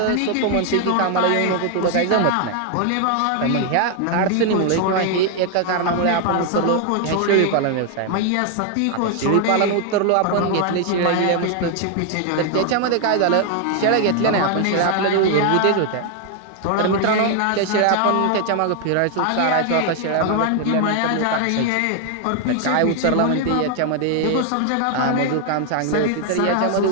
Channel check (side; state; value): both; different; correlation 0.00